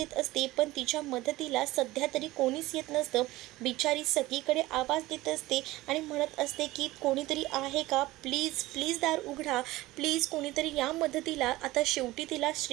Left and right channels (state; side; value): quieter; left; 18.3 dB